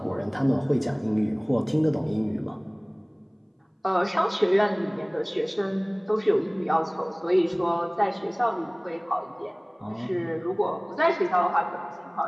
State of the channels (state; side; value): identical; both; correlation 1.00